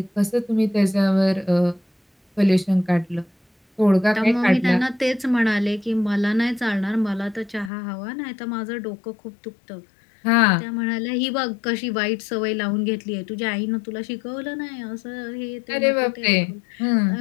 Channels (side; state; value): right; drops out; at 7.7 s